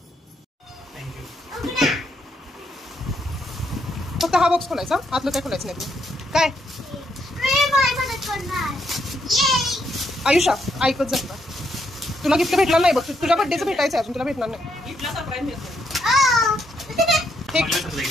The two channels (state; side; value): normal; both; correlation 0.76